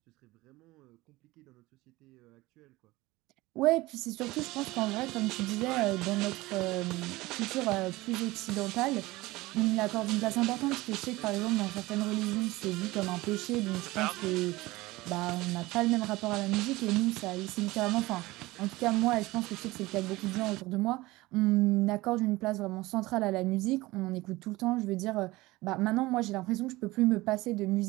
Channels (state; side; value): quieter; left; 19.9 dB